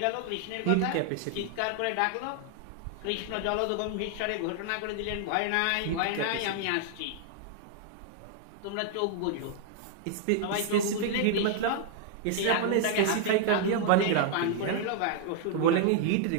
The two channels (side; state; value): both; different; correlation 0.00